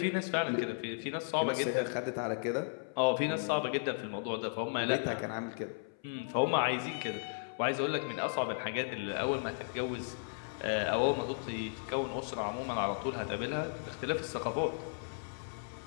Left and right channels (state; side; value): silent; right; 54 dB below the other